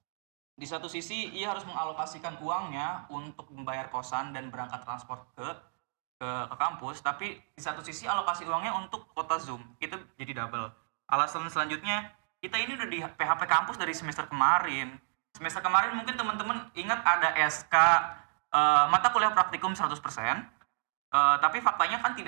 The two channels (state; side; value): silent; left; digital silence